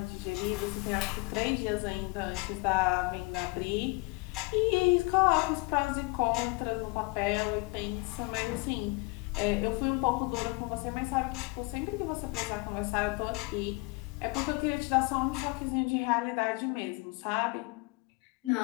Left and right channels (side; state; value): right; quieter; 26.7 dB